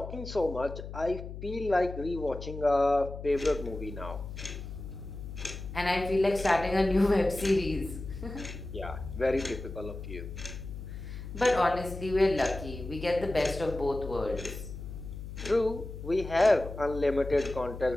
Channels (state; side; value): noise; left; hum, 10 dB below the sound